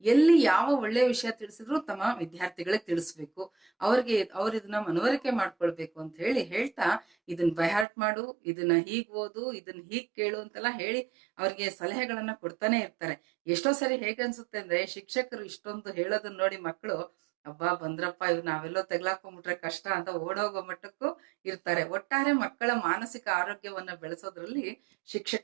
ಎಲ್ಲಿ ಯಾವ ಒಳ್ಳೆಯ ವಿಷಯ ತಿಳಿಸಿದ್ರು ತಮ್ಮ ವಿದ್ಯಾರ್ಥಿಗಳಿಗೆ ತಿಳಿಸ್ಬೇಕು, ಅವ್ರ ಇದನ್ನ ಮನವರಿಕೆ ಮಾಡ್ಕೊಳ್ಬೇಕು ಅಂತ ಹೇಳ್ತಾ ಇದನ್ನ ಬೈಹಾರ್ಟ್ ಮಾಡು, ಇದನ್ನ ಹೀಗ್ ಓದು, ಇದನ್ನ ಹೀಗ್ ಕೇಳು ಅಂತೆಲ್ಲ ಹೇಳಿ ಅವ್ರಿಗೆ ಸಲಹೆಗಳನ್ನ ಕೊಡ್ತಾನೆ ಇರ್ತಾರೆ. ಎಷ್ಟೋ ಸರಿ ಹೇಗನ್ಸುತ್ತೆ ಅಂದ್ರೆ, ಶಿಕ್ಷಕರು ಇಷ್ಟೊಂದು ಹೇಳೋದನ್ನ ನೋಡಿ ಮಕ್ಕಳು ಅಬ್ಬಾ ಬಂದ್ರಪ್ಪ, ಇವ್ ನಾವೆಲ್ಲೋ ತೆಗ್ಲಾಕೊಂಡ್ಬಿಟ್ರೆ ಕಷ್ಟ ಅಂತ ಓಡೋಗೋ ಮಟ್ಟಕ್ಕೂ ಇರ್ತಾರೆ. ಒಟ್ಟಾರೆ ಮಕ್ಕಳ ಮಾನಸಿಕ ಆರೋಗ್ಯವನ್ನ ಬೆಳೆಸೋದ್ರಲ್ಲಿ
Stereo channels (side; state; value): left; drops out; at 7.9 s